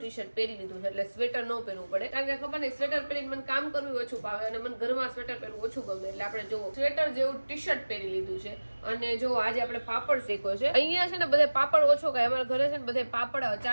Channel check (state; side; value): inverted; both; correlation -1.00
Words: શર્ટ પહેરી લીધું છે, એટલે સ્વેટર ન પહેરવું પડે, કારણ કે ખબર નહીં સ્વેટર પહેરીને મને કામ કરવું ઓછું ભાવે અને મને ઘરમાં સ્વેટર પહેરવું ઓછું ગમે. એટલે આપણે જો સ્વેટર જેવું ટી શર્ટ પહેરી લીધું છે. અને જો આજે આપણે પાપડ શેકો છે. અહીંયા છે ને બધે પાપડ ઓછો ખાય, અમારા ઘરે છે ને બધે પાપડ